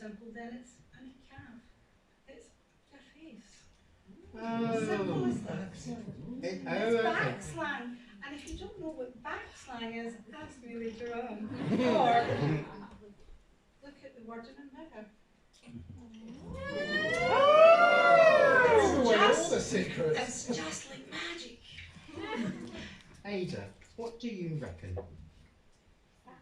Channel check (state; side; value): identical; both; correlation 1.00